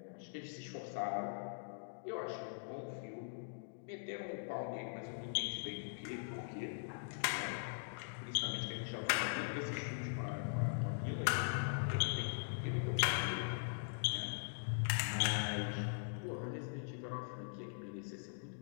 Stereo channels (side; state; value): right; silent; digital silence